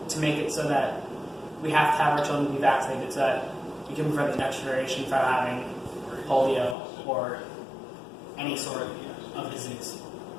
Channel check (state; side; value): drops out; right; at 6.8 s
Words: to make it so that we have to have our children be vaccinated so that we can prevent the next generation from having polio or any sort of disease.